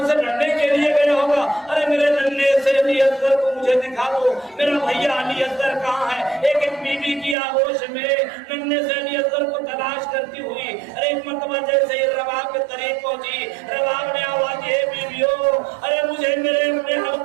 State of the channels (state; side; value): drops out; left; at 7.4 s